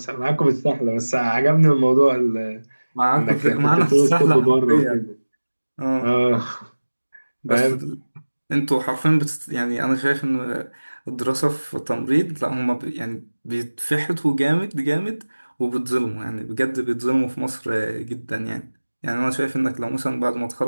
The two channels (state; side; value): inverted; both; correlation -1.00